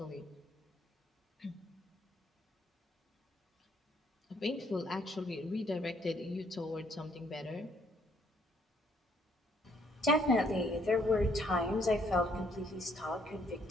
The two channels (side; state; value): both; normal; correlation 0.67